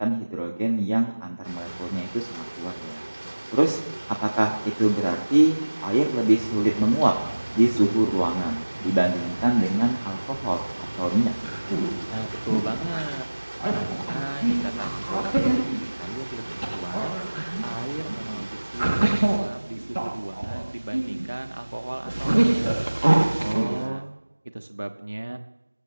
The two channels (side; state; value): both; inverted; correlation -1.00